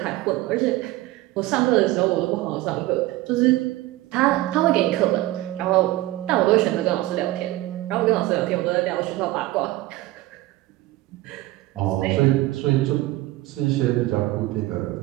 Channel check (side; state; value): left; quieter; 17.7 dB